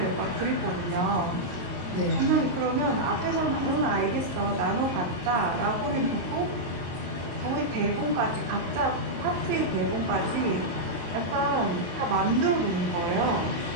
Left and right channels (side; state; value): left; late; 22 ms